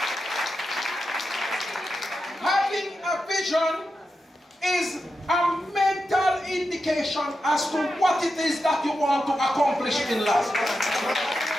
Having a vision is a mental indication as to what it is that you want to accomplish in life.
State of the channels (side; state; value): both; normal; correlation 0.89